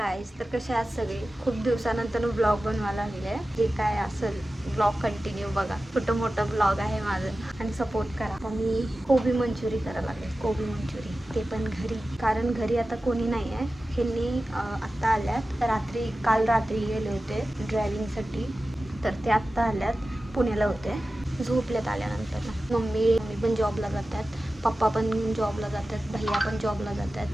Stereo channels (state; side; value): normal; both; correlation 0.95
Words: तर कसे आहात सगळे. खूप दिवसानंतर ब्लॉग बनवायला लागले. जे काय असेल ब्लॉग कंटिन्यू बघा. छोटं मोठं ब्लॉग आहे माझं आणि सपोर्ट करा. आता मी कोबी मंचुरी करायला लागले. कोबी मंचुरी ते पण घरी, कारण घरी आता कोणी नाही आहे. ह्यांनी आत्ता आल्यात. काल रात्री गेले होते ड्रायव्हिंगसाठी, तर ते आत्ता आल्यात. पुण्याला होते, झोपल्यात आल्यानंतर. मम्मी पण जॉबला जातात, पप्पा पण जॉबला जातात, भैया पण जॉबला जातात.